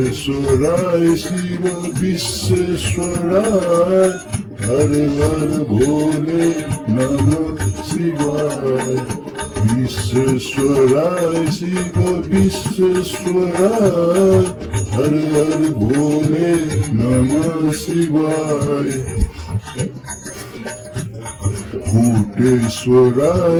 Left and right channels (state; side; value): identical; both; correlation 1.00